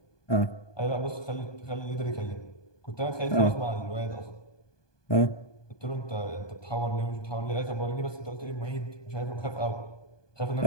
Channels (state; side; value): late; right; 1.2 ms